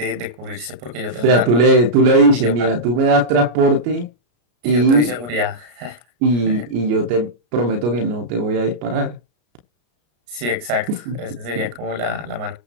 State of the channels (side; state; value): left; late; 33 ms